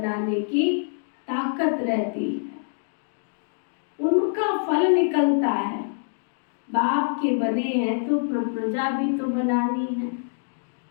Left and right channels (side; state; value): right; silent; digital silence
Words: की ताकत रहती है, उनका फल निकलता है। बाप के बने हैं तो प्रजा भी तो बनानी है,